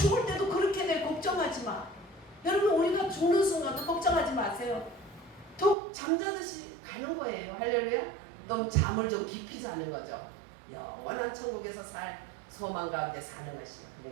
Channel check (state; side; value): drops out; left; at 5.8 s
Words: 때도 그렇게 돼. 걱정하지 마. 여러분 우리가 죽는 순간도 걱정하지 마세요. 툭 잠자듯이 가는 거예요. 할렐루야. 넌 잠을 좀 깊이 자는 거죠. 영원한 천국에서 살 소망 가운데 사는 것이야.